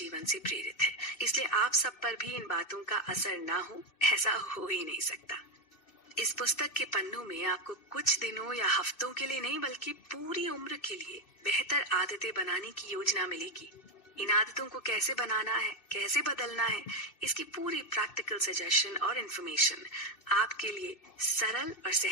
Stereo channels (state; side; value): late; right; 2.6 ms